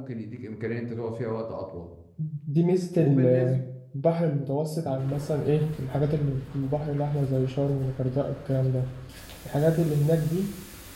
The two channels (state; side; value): identical; both; correlation 1.00